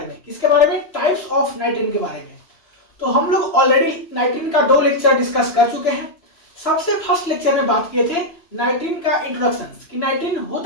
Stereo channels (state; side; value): late; right; 3.0 ms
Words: में। किसके बारे में? टाइप्स ऑफ नाइट्रीन के बारे में। तो हम लोग ऑलरेडी नाइट्रीन का 2 लेक्चर डिस्कस कर चुके हैं। सबसे फर्स्ट लेक्चर में बात किए थे नाइट्रीन का इंट्रोडक्शन कि नाइट्रीन